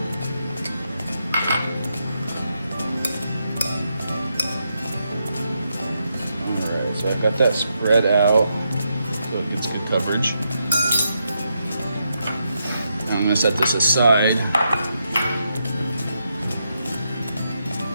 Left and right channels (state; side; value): inverted; both; correlation -0.82